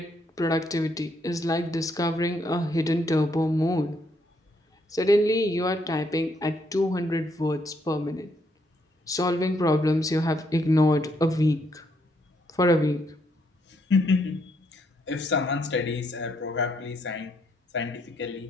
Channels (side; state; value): both; normal; correlation 0.74